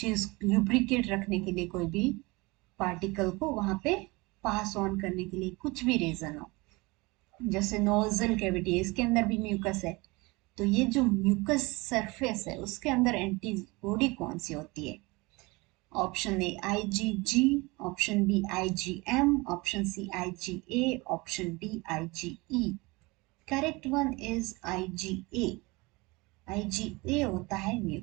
ल्यूब्रिकेट रखने के लिए, कोई भी पार्टिकल को वहां पे पास ऑन करने के लिए, कुछ भी रीजन हो, जैसे नोजल कैविटी, इसके अंदर भी म्यूकस है, तो ये जो म्यूकस सरफेस है उसके अंदर एंटीबॉडी कौन सी होती है? Option A IgG, option B IgM, option C IgA, option D IgE। Correct one is IgA। IgA होता है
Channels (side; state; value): left; quieter; 24.4 dB